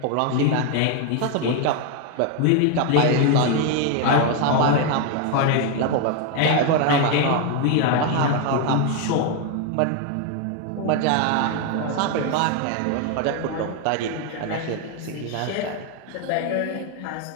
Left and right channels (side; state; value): both; different; correlation 0.01